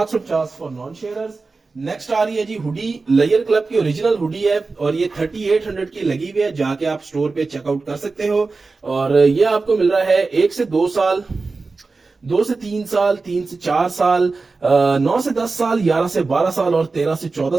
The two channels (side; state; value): left; quieter; 4.0 dB